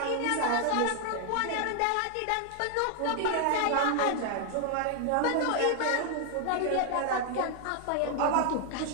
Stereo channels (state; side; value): different; both; correlation 0.00